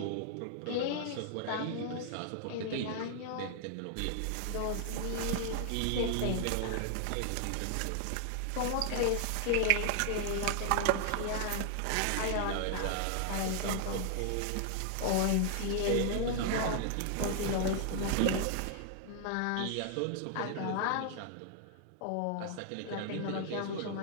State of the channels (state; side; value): different; both; correlation 0.00